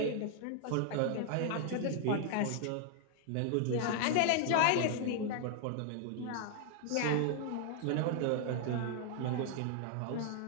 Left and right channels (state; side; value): different; both; correlation 0.00